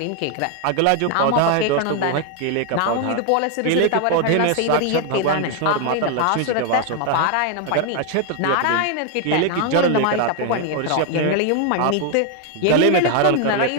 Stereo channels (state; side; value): different; both; correlation 0.00